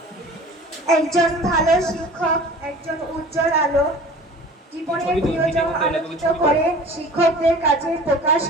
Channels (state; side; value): normal; both; correlation 0.42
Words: একজন ভালো শিক্ষক একজন উজ্জ্বল আলো, জীবনের প্রিয়জন আলোকিত করে শিক্ষকদের কাছে প্রকাশ